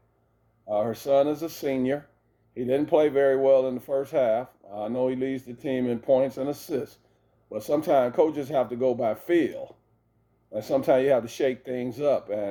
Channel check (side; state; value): both; identical; correlation 1.00